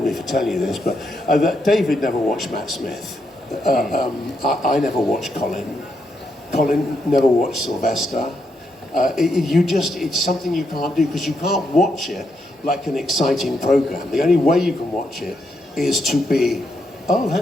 me for telling you this, but that David never watched Matt Smith. I never watched Colin. Colin never watched Sylvester. It's something you can't do because you can't watch it like an exciting program. The only way you can watch it is to be, oh,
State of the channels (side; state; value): both; normal; correlation 0.80